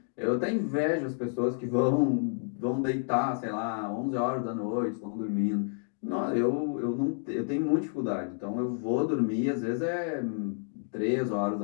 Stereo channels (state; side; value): silent; right; digital silence